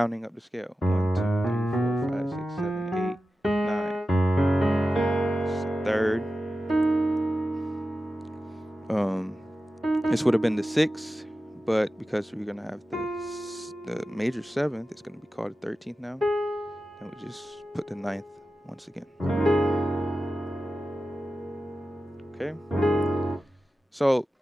up the scale. 1, 2, 3, 4, 5, 6, 7, 8, 9. It's the 3rd. This would have been the 6th, but because we're gonna have the major 7th, it's gonna be called the 13th now. And we just put the 9th once again. Okay. So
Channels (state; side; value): normal; both; correlation 0.93